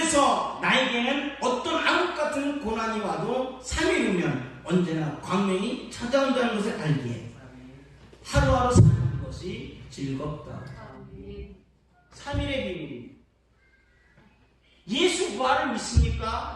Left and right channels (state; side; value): identical; both; correlation 1.00